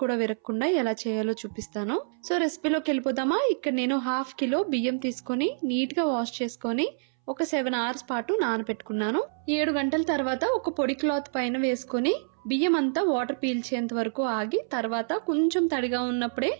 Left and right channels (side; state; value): left; silent; 60 dB below the other